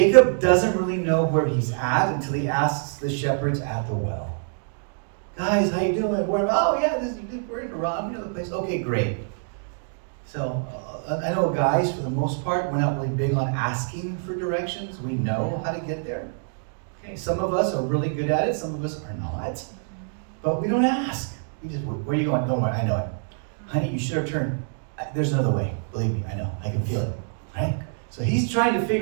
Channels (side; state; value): left; silent; digital silence